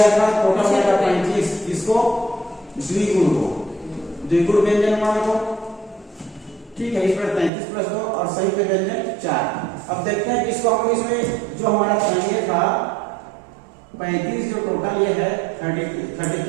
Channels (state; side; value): drops out; left; at 7.5 s